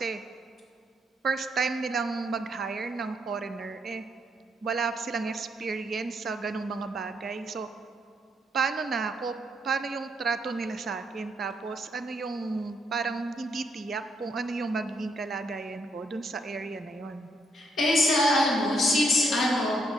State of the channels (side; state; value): both; normal; correlation 0.74